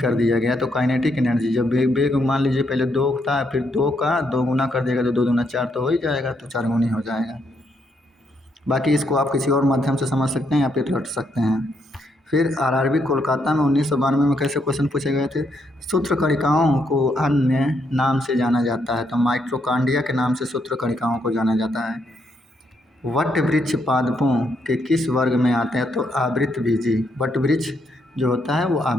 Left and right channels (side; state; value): both; normal; correlation 0.76